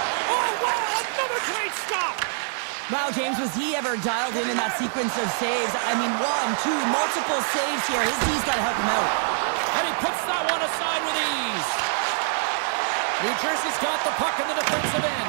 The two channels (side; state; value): left; silent; digital silence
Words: Oh, wow, another great stop. Wow, James, was he ever dialed in that sequence of saves? I mean, 1, 2, multiple saves here. His D's got to help him out. And he puts that one aside with ease. New Jersey's got the puck in the defensive